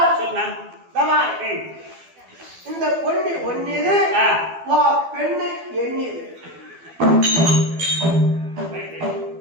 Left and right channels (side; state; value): left; late; 12 ms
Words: சொல்லுண்ணா இந்த பொண்ணு ஒன்னிது பெண்ணு எண்ணிது